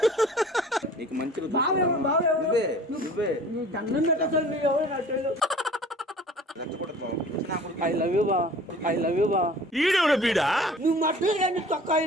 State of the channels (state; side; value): normal; both; correlation 0.46